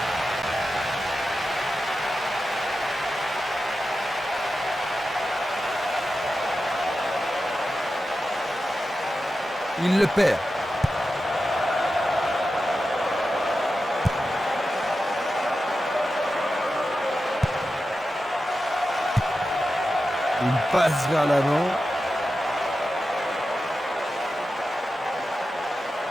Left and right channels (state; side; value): normal; both; correlation 0.91